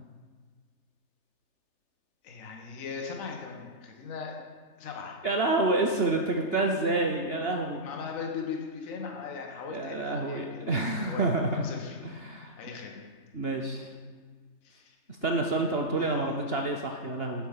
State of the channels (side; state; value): right; late; 2.8 ms